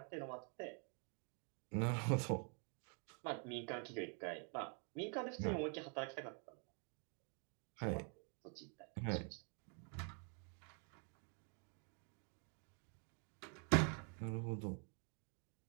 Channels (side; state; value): left; quieter; 38.8 dB